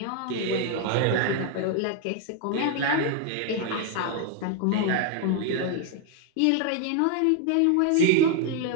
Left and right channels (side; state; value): both; different; correlation 0.00